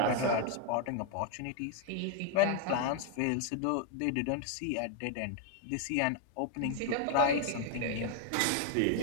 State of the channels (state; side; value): different; both; correlation 0.00